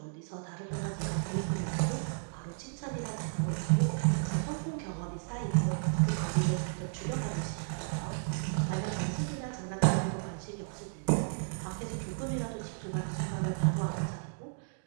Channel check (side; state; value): left; silent; digital silence